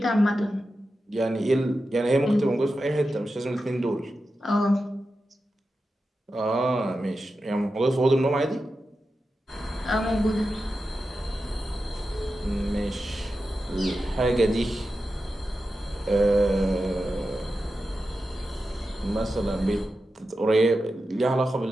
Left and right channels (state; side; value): normal; both; correlation 0.91